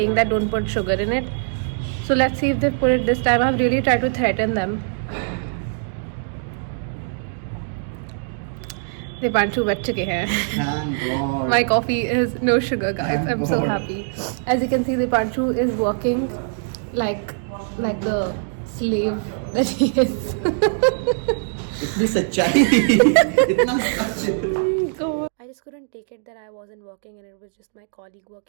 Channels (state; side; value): silent; left; digital silence